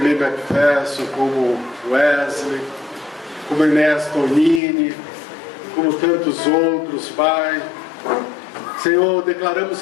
McPherson, como Wesley, como Inés Tonini, como tantos outros, Pai. Senhor, declaramos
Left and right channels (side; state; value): right; drops out; at 4.6 s